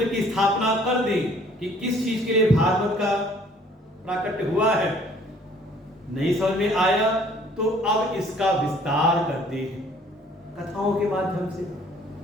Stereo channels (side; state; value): both; normal; correlation 0.57